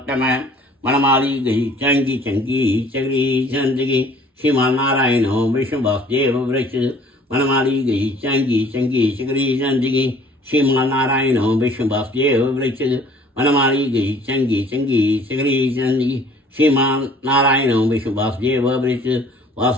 मनमाली गई चंगी चंगी चगरी चंदगी श्रीमान नारायणो विष्णुवासुदेव वृक्ष मनमाली गई चंगी चंगी चगरी चंदगी श्रीमान नारायणो विष्णुवासुदेव वृक्ष मनमाली गई चंगी चंगी चगरी चंदगी श्रीमान नारायणो विष्णुवासुदेव वृक्ष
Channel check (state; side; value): normal; both; correlation 0.54